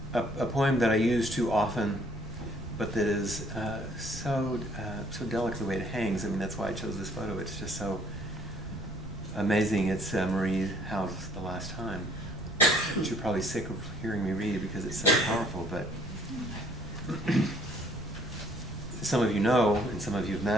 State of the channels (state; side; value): noise; right; rumble, 10 dB below the sound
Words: A poem that I use too often, but that is so delicate the way it hangs. I mean, that's why I chose this photo. It's just so amazing. It's Marie Howe's The Last Time, which you're probably sick of hearing me read because it's so powerful. But some of you know, and some of you have